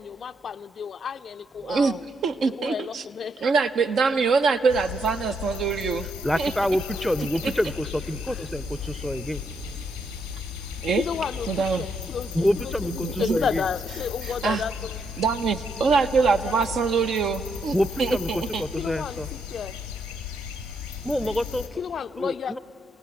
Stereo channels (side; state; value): both; normal; correlation 0.76